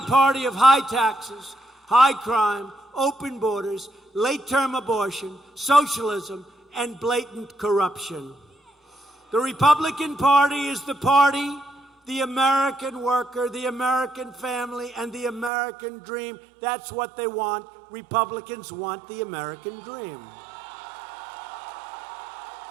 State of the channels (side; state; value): left; drops out; at 15.5 s